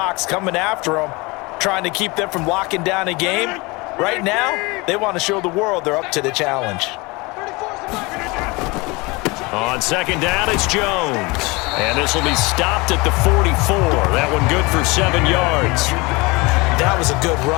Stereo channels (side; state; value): right; quieter; 25.1 dB